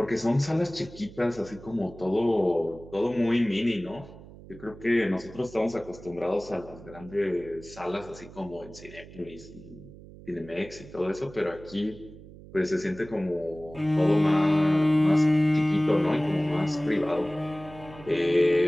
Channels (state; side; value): noise; right; hum, 18 dB below the sound